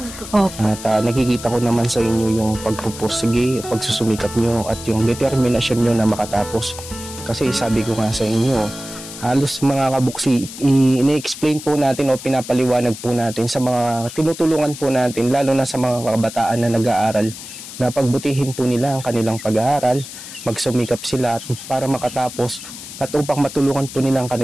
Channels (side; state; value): left; noise; hiss, 12 dB below the sound